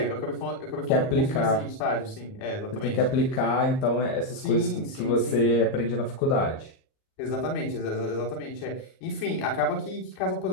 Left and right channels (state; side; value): late; right; 38 ms